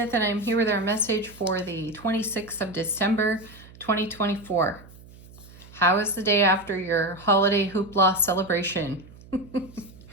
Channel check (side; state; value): right; noise; hum, 21 dB below the sound